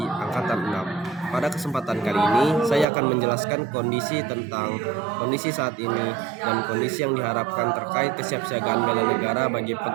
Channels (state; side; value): drops out; left; at 2.9 s